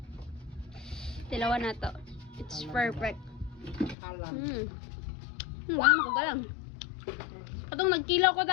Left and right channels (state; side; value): drops out; right; at 4.0 s